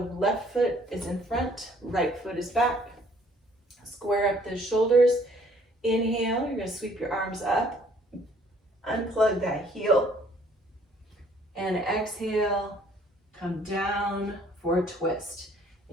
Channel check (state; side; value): normal; both; correlation 0.60